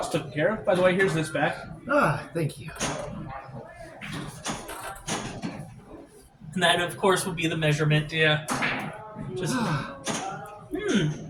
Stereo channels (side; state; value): both; identical; correlation 1.00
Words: taken care of. By the way, here's this back. Ah, thank you. And that, of course, would be the measurement. Yeah. Just,